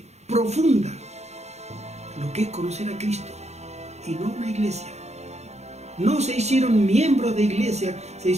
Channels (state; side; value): late; left; 0.32 ms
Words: profunda, lo que es conocer a Cristo y no una iglesia. No se hicieron miembros de iglesia, se